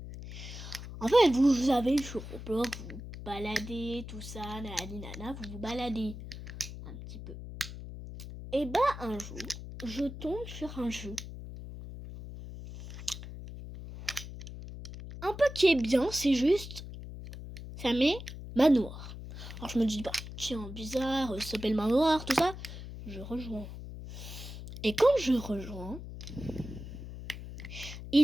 En fait, vous avez sur Roblox, vous baladez, tout ça, nana, vous baladez un petit peu. Et bah un jour, je tombe sur un jeu. Un peu qui est bien, c'est juste, ça met manoir. Alors je me dis, tiens, bizarre, ça s'appelle manoir, tout ça. Je rejoins. Et quand je rejoins,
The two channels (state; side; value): noise; left; hum, 11 dB below the sound